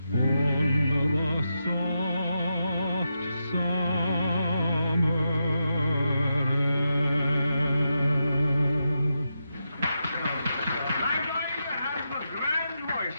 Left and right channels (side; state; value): both; inverted; correlation -0.86